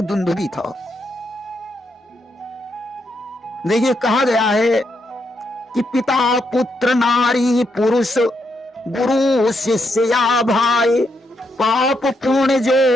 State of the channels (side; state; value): both; normal; correlation 0.80